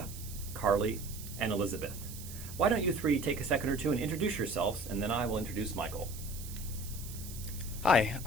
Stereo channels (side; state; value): right; noise; hiss, 13 dB below the sound